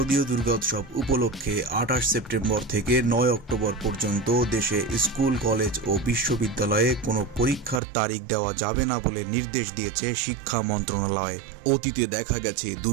দুর্গোৎসব উপলক্ষে 28 সেপ্টেম্বর থেকে 9 অক্টোবর পর্যন্ত দেশে স্কুল, কলেজ ও বিশ্ববিদ্যালয়ে কোনো পরীক্ষার তারিখ দেওয়া যাবে না বলে নির্দেশ দিয়েছে শিক্ষা মন্ত্রণালয়। অতীতে দেখা গেছে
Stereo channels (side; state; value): left; drops out; at 7.8 s